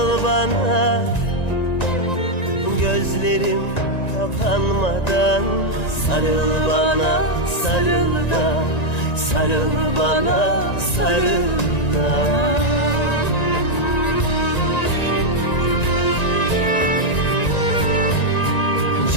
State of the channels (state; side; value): late; right; 1.9 ms